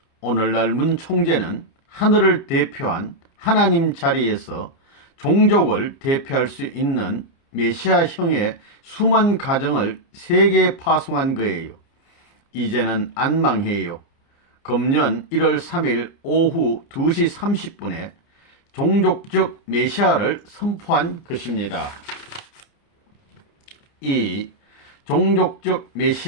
오늘날 문 총재는 하늘을 대표한 하나님 자리에서 종족을 대표할 수 있는 메시아형의 수만 가정을 세계에 파송한 거예요. 이제는 안 망해요. 금년 1월 3일 오후 2시 30분에 종족적 메시아를 선포한 것입니다. 2. 종족적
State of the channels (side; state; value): right; late; 29 ms